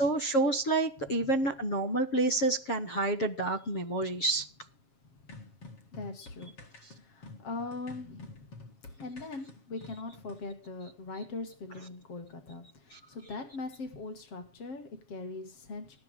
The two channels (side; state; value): right; late; 7.4 ms